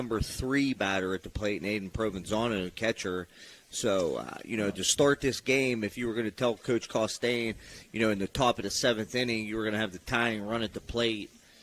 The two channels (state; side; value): identical; both; correlation 1.00